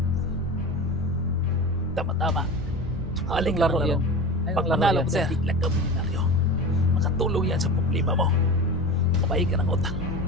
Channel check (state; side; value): normal; both; correlation 0.30